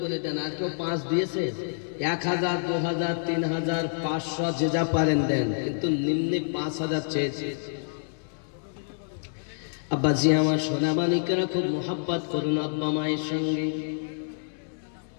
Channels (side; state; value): right; silent; digital silence